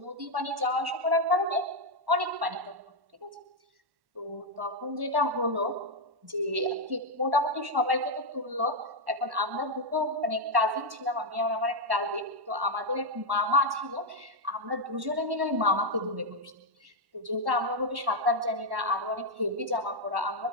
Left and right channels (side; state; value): left; late; 1.1 ms